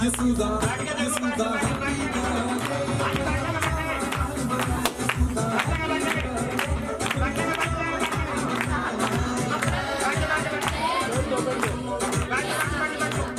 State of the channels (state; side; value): identical; both; correlation 1.00